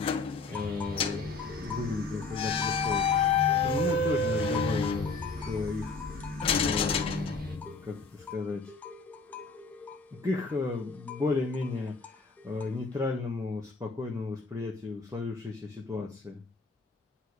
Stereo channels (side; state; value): right; quieter; 4.0 dB